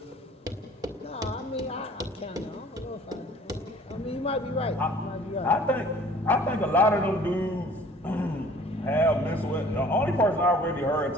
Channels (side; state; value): both; normal; correlation 0.52